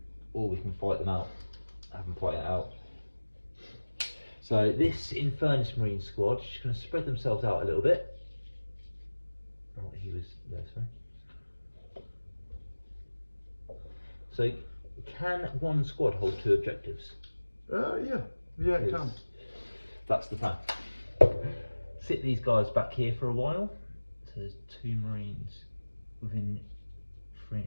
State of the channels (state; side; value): inverted; both; correlation -1.00